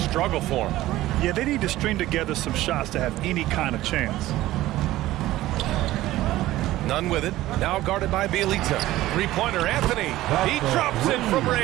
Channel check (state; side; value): quieter; left; 15.9 dB